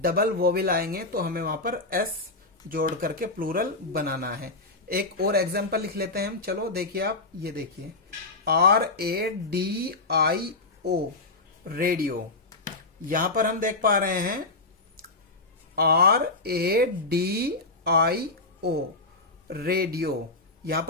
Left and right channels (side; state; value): right; quieter; 3.2 dB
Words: वोवेल आएंगे तो हमें वहां पर एस जोड़ करके प्लूरल बनाना है। एक और एग्जांपल लिख लेते हैं हम। चलो देखिए आप, ये देखिए RADIO रेडियो। यहां पर हम देख पा रहे हैं RADIO रेडियो, यहां